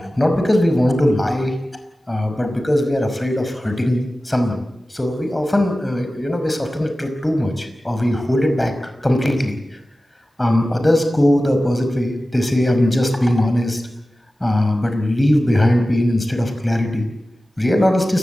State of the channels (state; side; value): normal; both; correlation 0.95